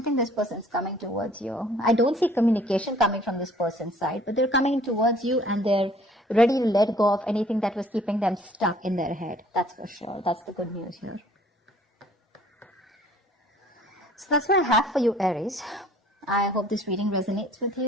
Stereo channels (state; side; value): normal; both; correlation 0.55